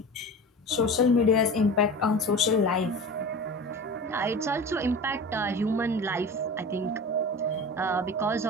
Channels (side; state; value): both; normal; correlation 0.33